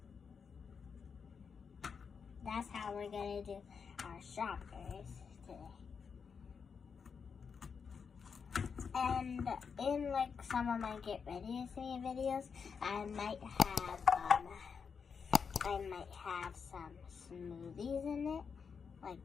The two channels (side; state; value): right; quieter; 6.0 dB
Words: That's how we're going to do our strawberries today. And in like some of my get ready with me videos, I might have some smoothies in it, like